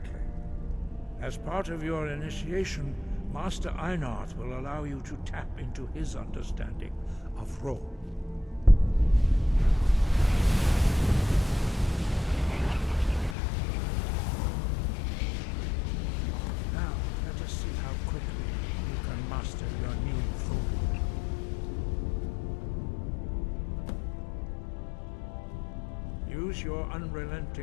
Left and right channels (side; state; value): right; drops out; at 13.4 s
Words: As part of your initiation, Master Einarth will allow you to tap into his understanding of Ro. Your new food. Use your